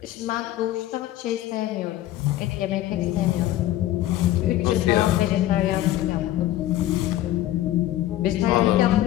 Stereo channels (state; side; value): quieter; right; 14.2 dB